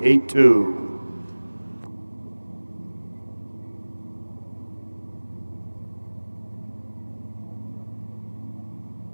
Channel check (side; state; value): both; inverted; correlation -1.00